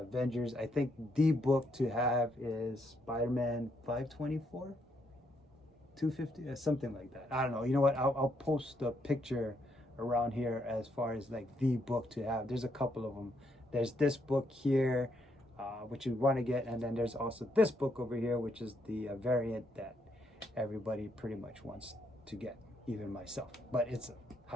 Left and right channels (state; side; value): normal; both; correlation 0.75